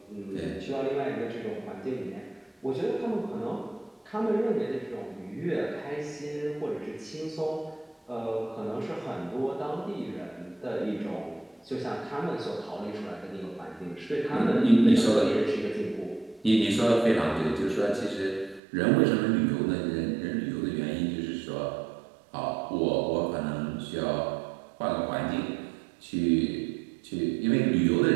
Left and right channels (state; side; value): drops out; left; at 18.6 s